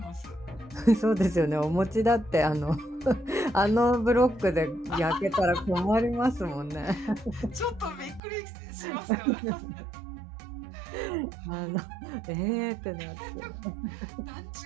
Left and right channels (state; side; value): drops out; left; at 8.2 s